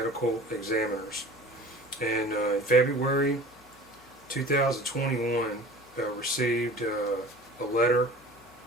Examiners. And in February 2021, I received a letter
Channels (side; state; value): both; normal; correlation 0.41